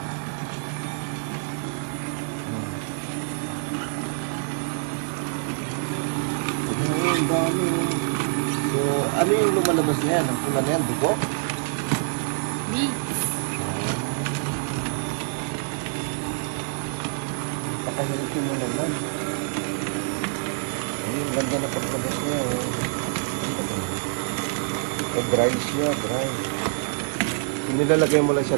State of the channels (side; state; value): left; silent; digital silence